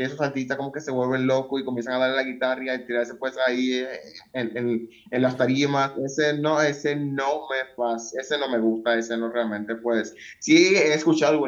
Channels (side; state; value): both; identical; correlation 1.00